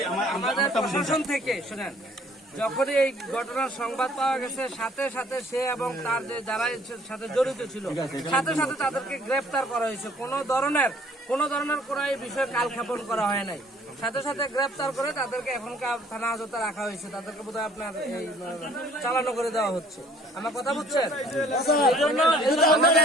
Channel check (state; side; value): normal; both; correlation 0.57